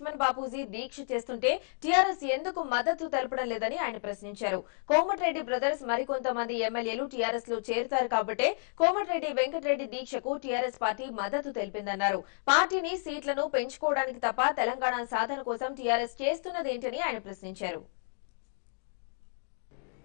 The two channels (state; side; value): silent; right; digital silence